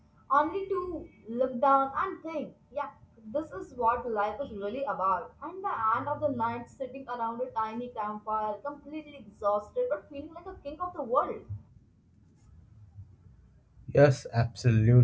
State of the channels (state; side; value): identical; both; correlation 1.00